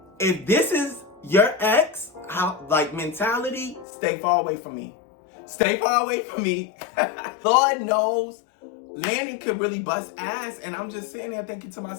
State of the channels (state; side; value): drops out; right; at 3.9 s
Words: if this is your ex, mentality, stay far away from me. Stay far away from me. Lord knows Landon could really bust ass, and I'm just sitting there thinking to